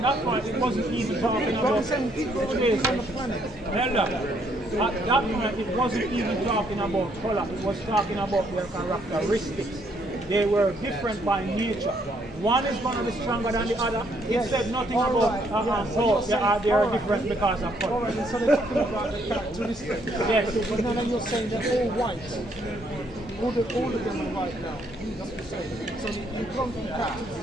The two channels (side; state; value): both; normal; correlation 0.70